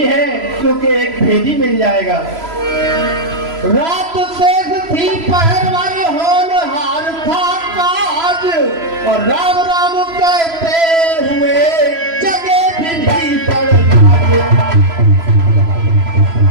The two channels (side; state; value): left; late; 3.0 ms